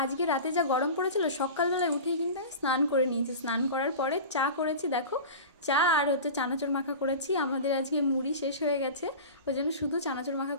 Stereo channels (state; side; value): inverted; both; correlation -0.32